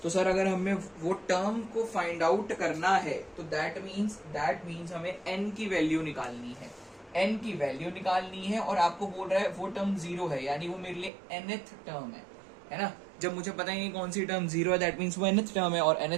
तो सर अगर हमें वो टर्म को फाइंड आउट करना है तो दैट मीन्स हमें n की वैल्यू निकालनी है। n की वैल्यू निकालनी है और आपको बोल रहा है वो टर्म 0 है, यानी वो मेरे लिए nth टर्म है ना। जब मुझे पता ही नहीं कौन सी टर्म 0 है, दैट मीन्स वो nth टर्म है, और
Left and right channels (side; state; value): left; drops out; at 11.1 s